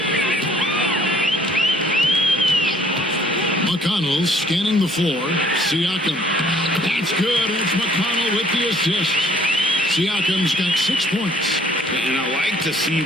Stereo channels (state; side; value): normal; both; correlation 0.59